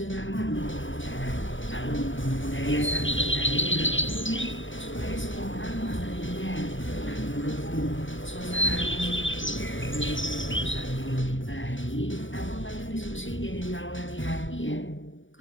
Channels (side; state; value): right; late; 0.56 ms